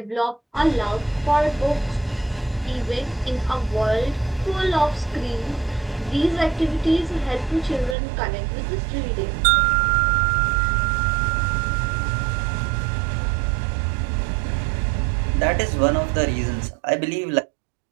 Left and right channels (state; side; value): drops out; left; at 8.0 s